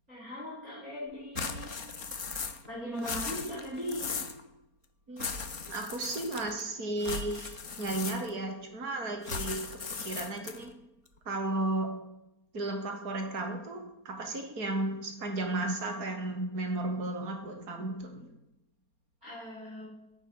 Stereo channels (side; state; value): left; late; 4.3 ms